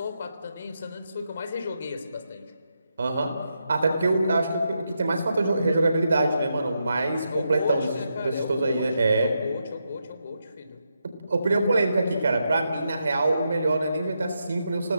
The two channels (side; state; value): both; inverted; correlation -0.84